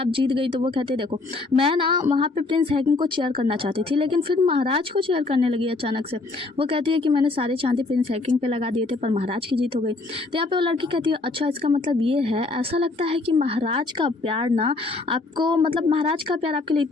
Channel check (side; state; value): right; quieter; 3.4 dB